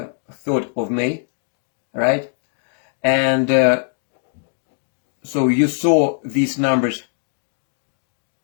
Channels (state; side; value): silent; right; digital silence